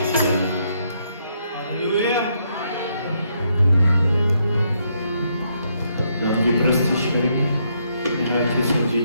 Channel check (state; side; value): inverted; both; correlation -0.75